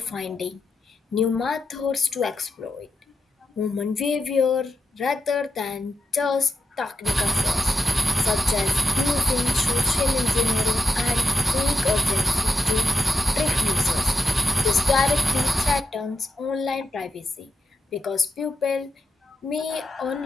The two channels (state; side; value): normal; both; correlation 0.88